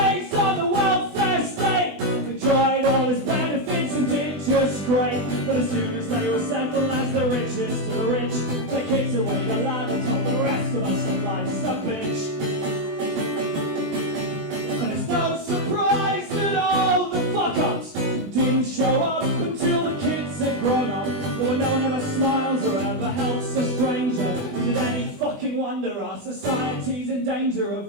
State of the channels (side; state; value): left; late; 20 ms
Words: on the welfare state. They tried all its benefits and did just great. But as soon as they were settled as the richest of the rich, the kids away the ladder told the rest of us that life's a bitch. And it's no surprise that all the fuck-ups didn't show up until the kids had grown up. But when no one ever smiles or ever helps a stranger, is it any fucking wonder our society's in danger